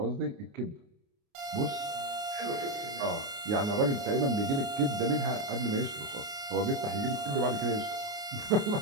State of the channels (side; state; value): left; late; 29 ms